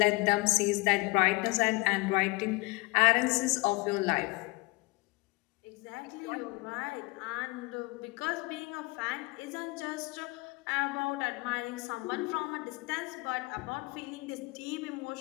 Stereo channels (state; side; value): quieter; right; 24.9 dB